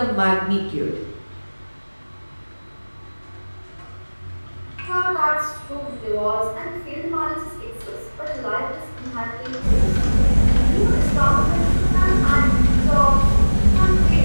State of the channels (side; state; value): both; inverted; correlation -1.00